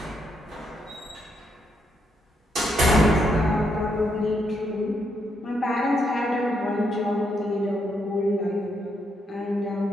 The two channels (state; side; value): normal; both; correlation 0.78